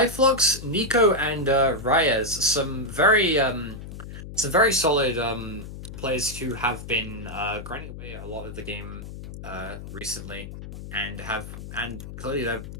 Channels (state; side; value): noise; left; hum, 11 dB below the sound